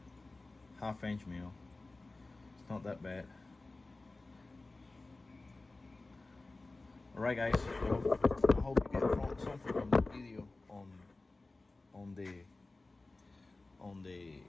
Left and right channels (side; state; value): right; quieter; 3.2 dB